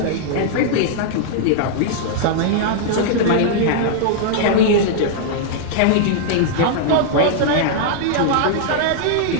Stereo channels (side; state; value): both; different; correlation -0.01